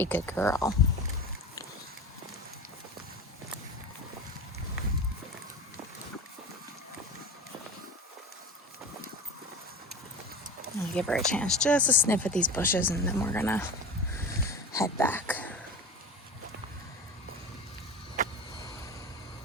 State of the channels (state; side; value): normal; both; correlation 0.31